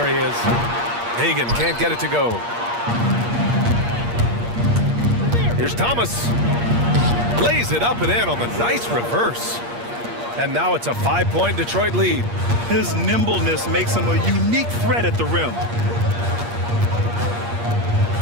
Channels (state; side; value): late; left; 8.5 ms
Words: he is. Hagan can't get it to go. Here's Thomas. Lays it up and in on the nice reverse. And now it's a 5-point Detroit lead. His nimbleness makes him a unique threat at the rim.